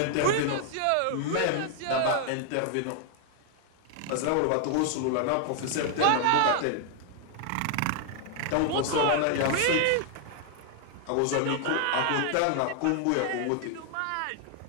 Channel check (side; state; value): both; different; correlation 0.00